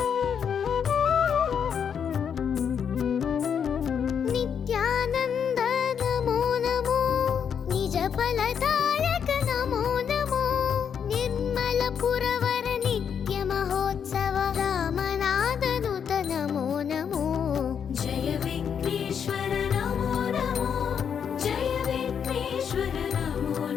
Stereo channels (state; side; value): quieter; right; 7.6 dB